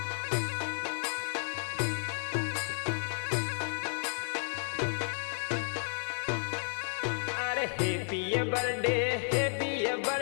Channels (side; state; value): right; silent; digital silence